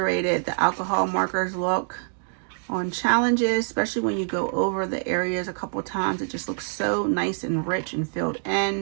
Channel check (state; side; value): silent; left; digital silence